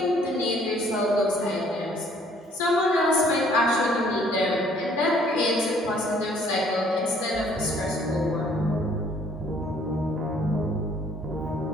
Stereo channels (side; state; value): both; normal; correlation 0.60